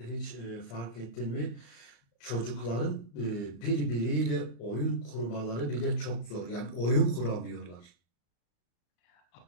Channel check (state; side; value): late; right; 34 ms